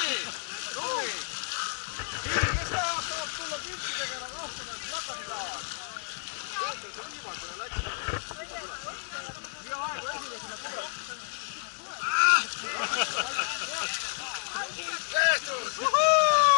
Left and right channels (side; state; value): right; silent; digital silence